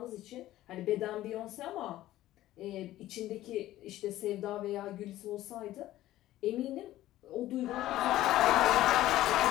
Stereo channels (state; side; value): quieter; right; 14.9 dB